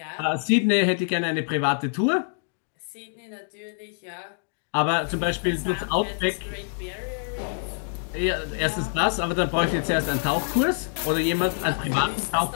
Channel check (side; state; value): right; silent; digital silence